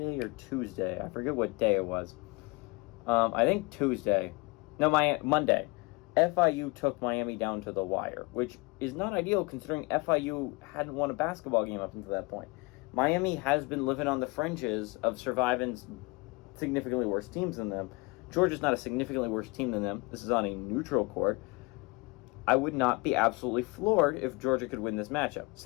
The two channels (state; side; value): quieter; right; 26.4 dB